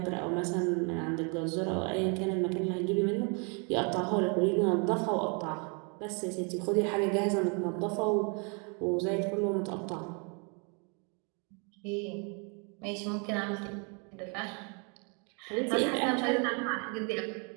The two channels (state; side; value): quieter; left; 35.7 dB